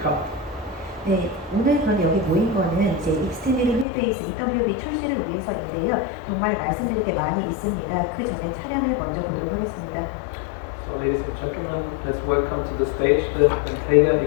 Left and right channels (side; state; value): right; drops out; at 3.9 s